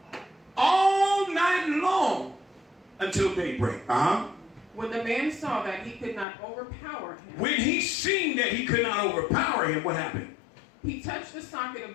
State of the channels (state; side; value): drops out; right; at 6.2 s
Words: all night long until daybreak. When the man saw that he could not overpower him. When he seen that he could not overpower him, what happened? He touched the socket